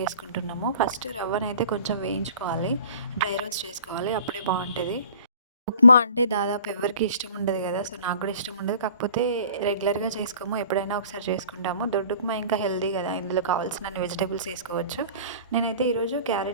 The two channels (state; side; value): inverted; both; correlation -0.47